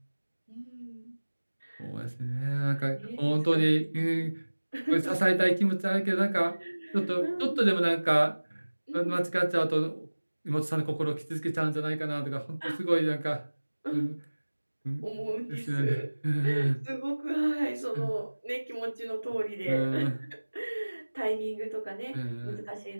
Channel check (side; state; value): both; inverted; correlation -1.00